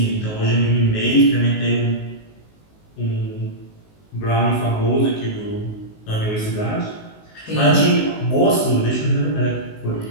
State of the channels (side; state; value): right; late; 19 ms